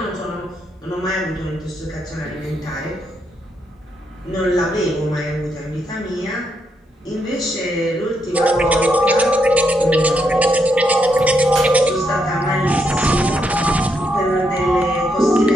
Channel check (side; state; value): both; normal; correlation 0.79